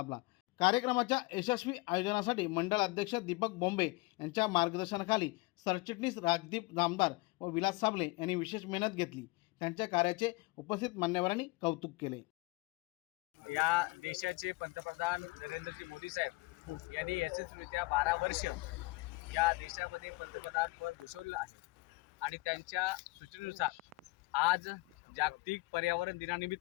कार्यक्रमाच्या यशस्वी आयोजनासाठी मंडळ अध्यक्ष दीपक बोंबे यांच्या मार्गदर्शनाखाली सरचिटणीस राजदीप जामदार व विलास साबळे यांनी विशेष मेहनत घेतली। त्यांच्या कार्याचे उपस्थित मान्यवरांनी कौतुक केले। या देशाचे पंतप्रधान नरेंद्रजी मोदी साहेब यांनी यशस्वीरित्या 12 वर्ष या देशामध्ये पंतप्रधान पद भूषवलं आहे आणि त्यांच्या सूचनेनुसार आज जागतिक पर्यावरण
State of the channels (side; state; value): right; quieter; 24.4 dB